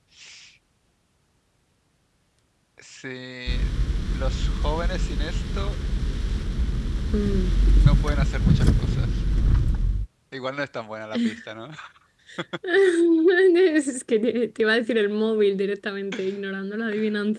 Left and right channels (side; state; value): both; identical; correlation 1.00